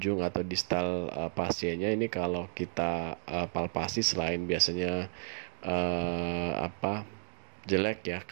atau distal pasiennya ini kalau kita palpasi, selain biasanya jelek ya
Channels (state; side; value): silent; left; digital silence